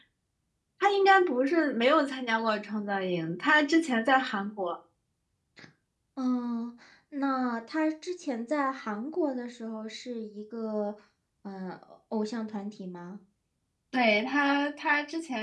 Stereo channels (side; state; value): both; identical; correlation 1.00